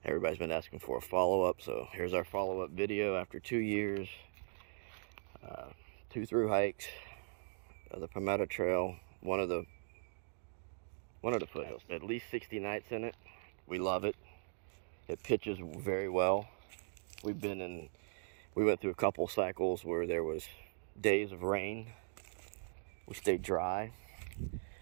Everybody's been asking for a follow-up, so here's our follow-up video after 2 years. 2 through hikes, the Palmetto Trail, one of the foothills. At least 60 nights in it. We love it. It pitches very well. We went through a couple cycles where there was days of rain. We stayed dry.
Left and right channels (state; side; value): silent; left; digital silence